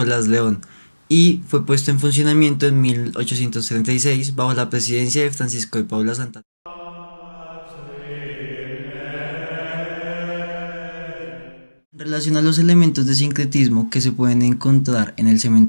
León y fue puesto en funcionamiento en 1836 bajo la presidencia de Francisco de Paula Santa. En relación a los elementos de sincretismo que se pueden encontrar en el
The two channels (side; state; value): both; inverted; correlation -1.00